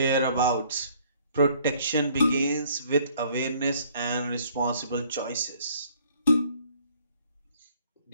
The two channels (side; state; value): both; inverted; correlation -0.61